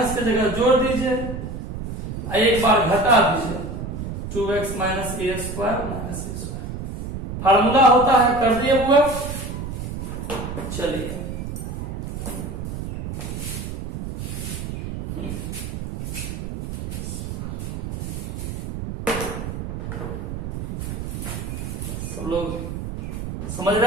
की जगह जोड़ दीजिए, एक बार घटा दीजिए 2x minus A square minus A square. Formula होता है, कर दिए हुआ। चलिए सब लोग समझ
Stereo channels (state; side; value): noise; right; rumble, 6 dB below the sound